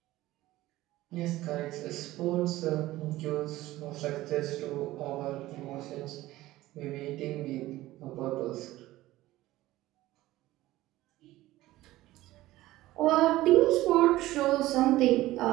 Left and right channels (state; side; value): quieter; left; 16.7 dB